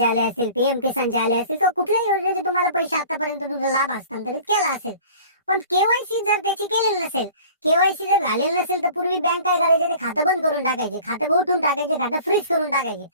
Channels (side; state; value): both; inverted; correlation -0.45